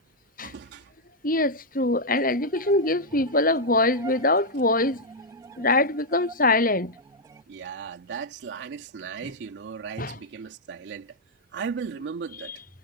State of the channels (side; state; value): both; normal; correlation -0.03